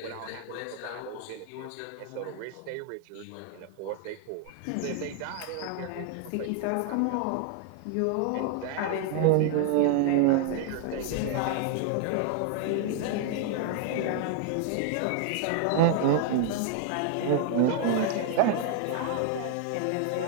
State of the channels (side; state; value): both; different; correlation 0.00